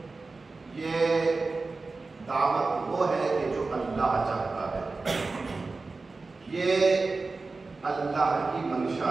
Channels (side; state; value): left; quieter; 3.8 dB